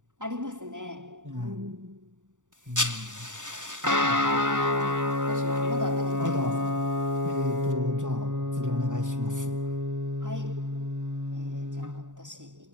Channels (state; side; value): late; left; 0.86 ms